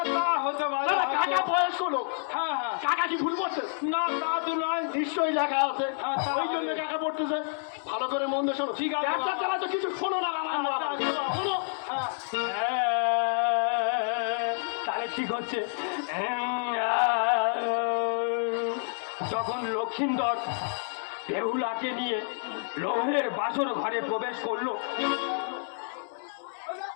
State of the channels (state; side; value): silent; right; digital silence